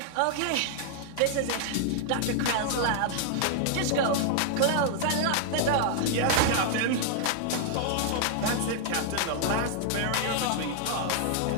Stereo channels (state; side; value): different; both; correlation 0.00